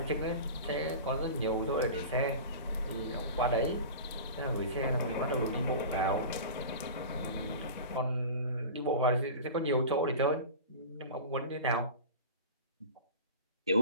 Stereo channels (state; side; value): inverted; both; correlation -0.34